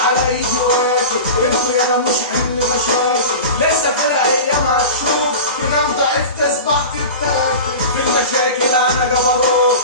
ايدي واكل انتوا يالا مش حمل مشاكل، لسه في الايام هتشوف تنام ضعيف تصبح تتاكل. في المشاكل انا جبروت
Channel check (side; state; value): both; inverted; correlation -0.31